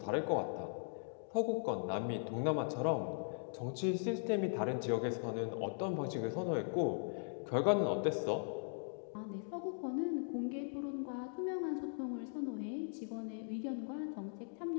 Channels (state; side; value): silent; right; digital silence